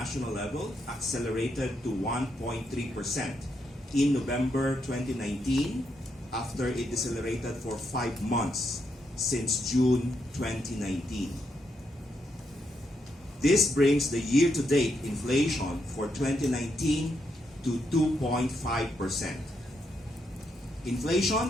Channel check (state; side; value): normal; both; correlation 0.79